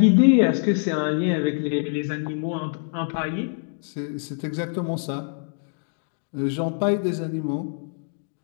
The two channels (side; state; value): right; silent; digital silence